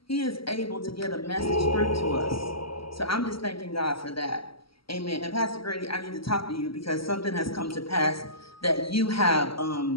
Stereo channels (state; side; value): late; right; 0.75 ms